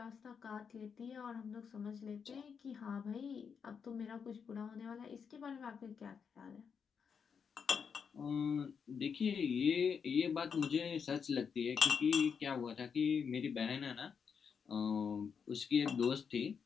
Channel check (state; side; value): quieter; right; 6.5 dB